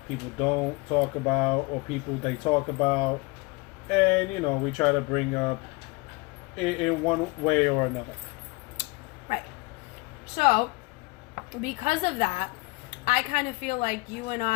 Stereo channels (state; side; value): quieter; right; 25.2 dB